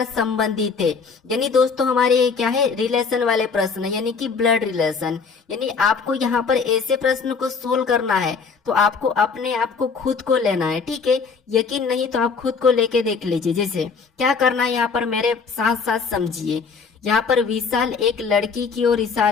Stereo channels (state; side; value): quieter; right; 5.3 dB